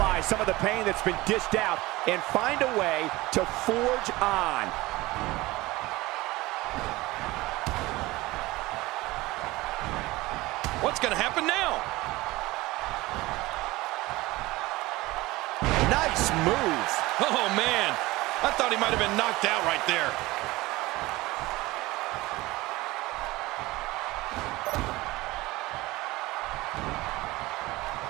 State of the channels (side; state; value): left; quieter; 19.9 dB